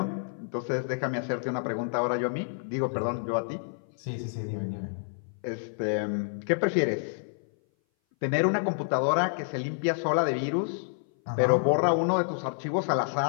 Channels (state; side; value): silent; right; 58 dB below the other